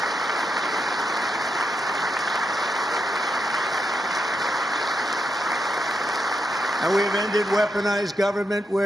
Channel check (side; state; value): both; normal; correlation 0.83